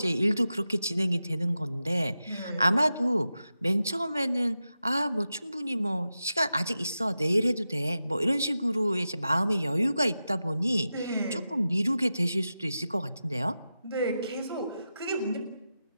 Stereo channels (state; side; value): inverted; both; correlation -0.91